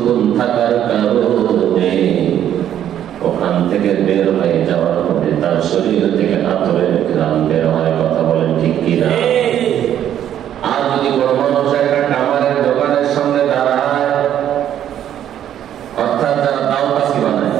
থাকার কারণে ওখান থেকে বের হয়ে যাওয়ার পরে তার শরীর থেকে আতরের ঘ্রাণ বের হয়। কথা বলেন ঠিক কিনা? আর যদি কোনো মানুষ একটা কামারের দোকানের সামনে দাঁড়ায়, অর্থাৎ যারা দাওকাশি বানায়,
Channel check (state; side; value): quieter; left; 10.6 dB